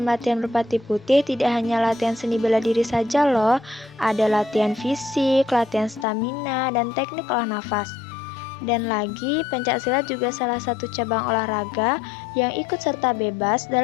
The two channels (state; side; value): drops out; right; at 6.1 s